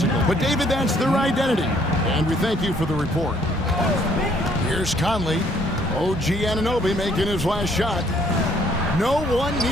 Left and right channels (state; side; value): normal; both; correlation 0.64